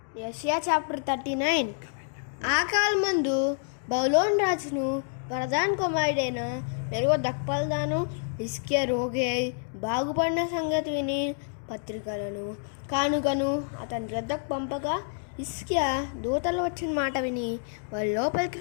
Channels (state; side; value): silent; right; digital silence